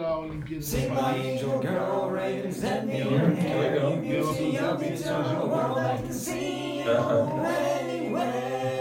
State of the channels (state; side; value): identical; both; correlation 1.00